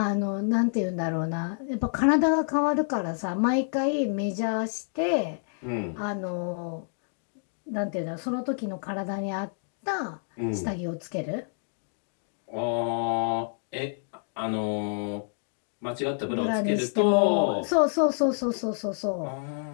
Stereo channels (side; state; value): right; silent; digital silence